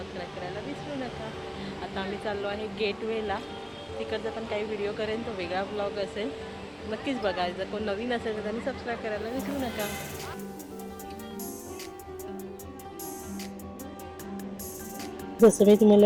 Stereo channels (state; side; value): identical; both; correlation 1.00